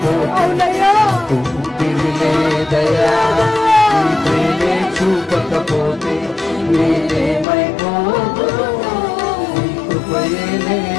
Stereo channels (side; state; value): right; drops out; at 7.5 s